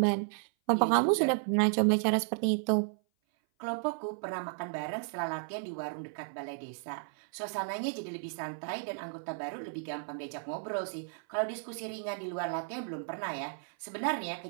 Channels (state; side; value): silent; left; 56 dB below the other